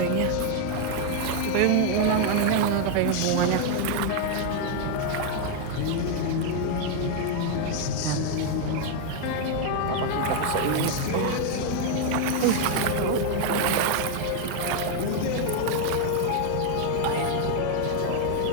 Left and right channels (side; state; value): both; different; correlation 0.00